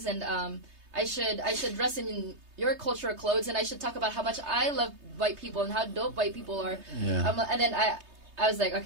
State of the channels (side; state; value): left; late; 3.2 ms